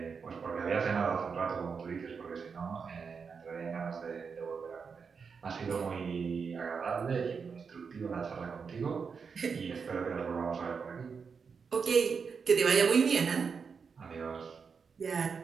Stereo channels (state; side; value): quieter; left; 5.7 dB